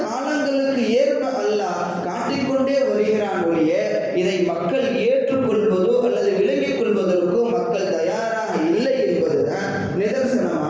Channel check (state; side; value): identical; both; correlation 1.00